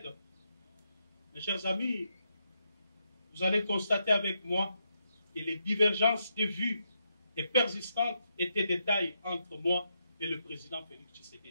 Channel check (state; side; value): inverted; both; correlation -0.81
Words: mes chers amis, vous allez constater avec moi que les divergences de vues et persistantes étaient des tailles entre moi et le président Félix